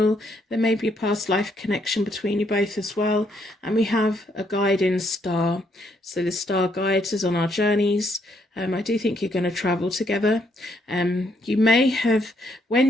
There may be a past life connection between you both as well. And we have a guiding star. So the star guides us on our journeys. I do think you're going to travel together. You may have,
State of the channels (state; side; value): normal; both; correlation 0.73